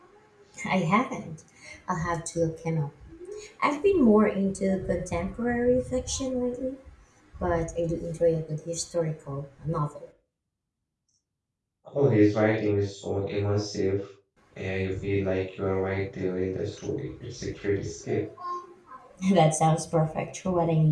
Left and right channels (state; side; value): identical; both; correlation 1.00